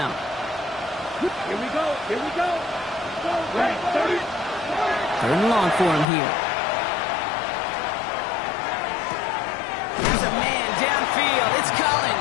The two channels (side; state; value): right; drops out; at 6.1 s